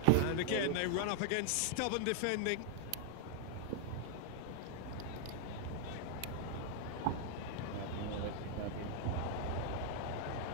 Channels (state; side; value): different; both; correlation 0.00